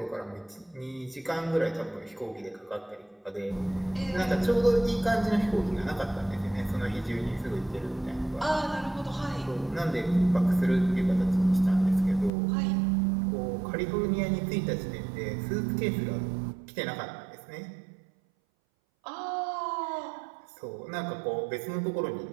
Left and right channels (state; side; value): drops out; left; at 12.3 s